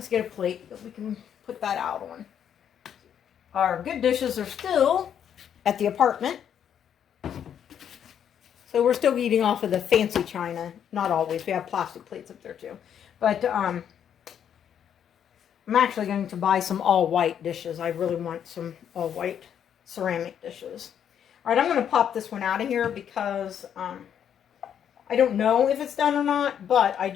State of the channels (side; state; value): right; quieter; 8.9 dB